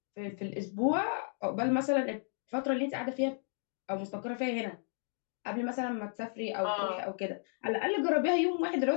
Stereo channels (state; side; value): silent; right; digital silence